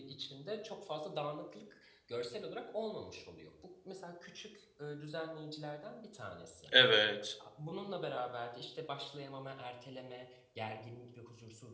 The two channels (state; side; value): identical; both; correlation 1.00